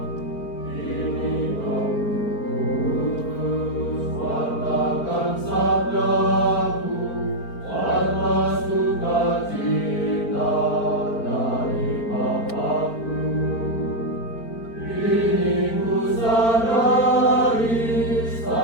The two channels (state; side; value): late; right; 4.4 ms